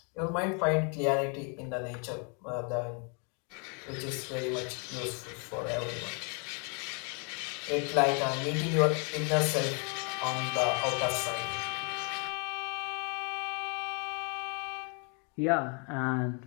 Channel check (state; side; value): quieter; right; 37.2 dB